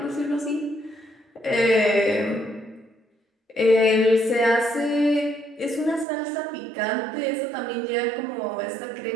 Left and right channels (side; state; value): left; drops out; at 6.1 s